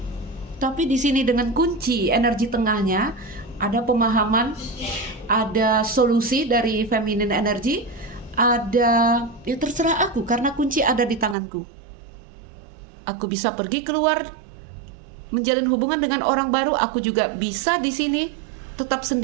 tapi di sini dengan kunci energi tengahnya ada pemahaman, ada solusi dari feminin energi, ada ya terserah aku karena kunci ada di tanganku. Aku bisa pergi keluar menjalin hubungan dengan orang baru, aku juga bisa di sini tetap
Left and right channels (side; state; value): left; drops out; at 11.4 s